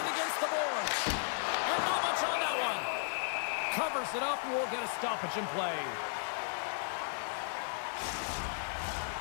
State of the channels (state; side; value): silent; right; digital silence